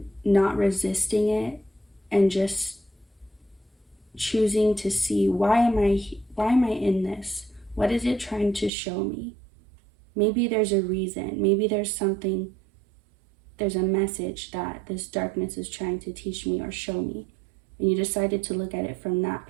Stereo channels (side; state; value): left; drops out; at 8.7 s